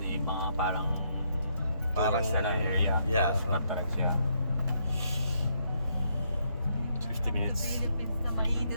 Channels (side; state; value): both; inverted; correlation -0.74